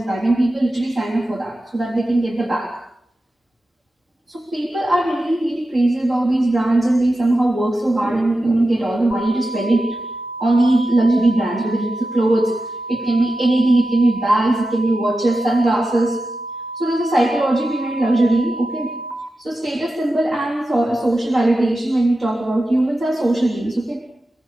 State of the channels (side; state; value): both; normal; correlation 0.92